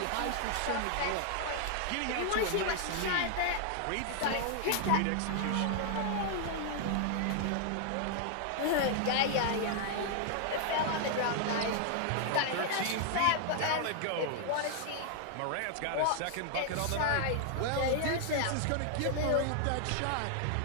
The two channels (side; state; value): both; different; correlation 0.00